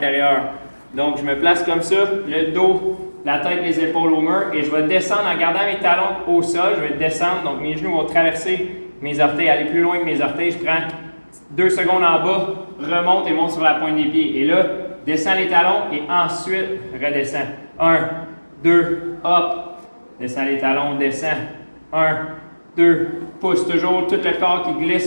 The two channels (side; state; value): both; inverted; correlation -1.00